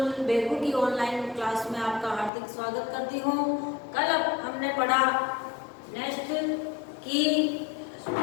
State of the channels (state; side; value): drops out; right; at 2.3 s